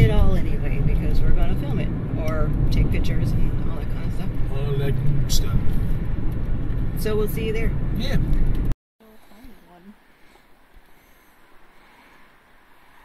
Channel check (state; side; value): identical; both; correlation 1.00